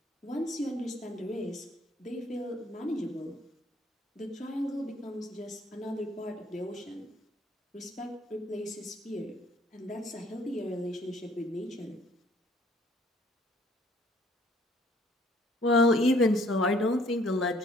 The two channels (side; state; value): both; normal; correlation 0.60